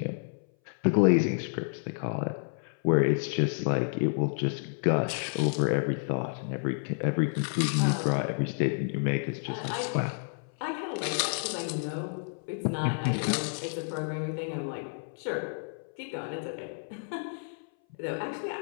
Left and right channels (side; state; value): right; silent; 58 dB below the other